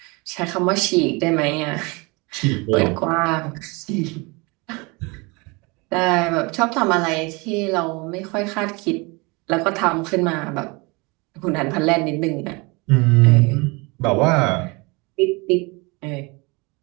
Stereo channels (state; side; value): quieter; left; 27.2 dB